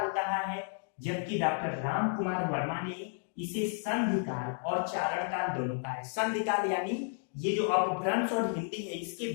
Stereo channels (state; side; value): silent; right; 56 dB below the other